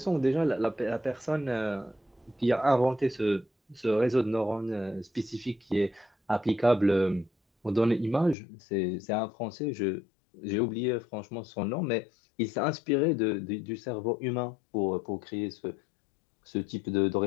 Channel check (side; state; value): right; drops out; at 8.3 s